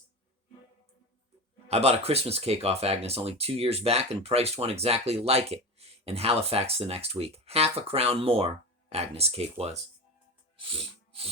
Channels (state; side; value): normal; both; correlation 0.26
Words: I bought a Christmas cake off Agnes only 2 years back and priced one exactly like it in Halifax the next week. Half a crown more, Agnes' cake was.